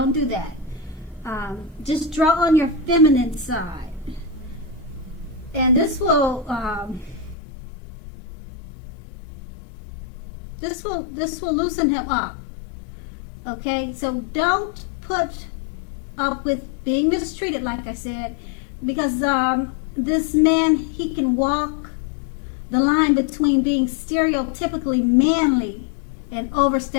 do that. Just draw on your feminine side. And this will loosen him up. Okay, so don't put up with being mistreated, like I said, because this man, he can walk the line between being stereotypically manly and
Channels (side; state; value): right; drops out; at 7.4 s